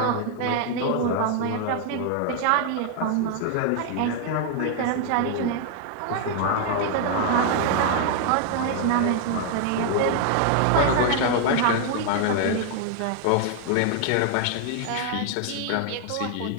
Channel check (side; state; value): both; different; correlation 0.00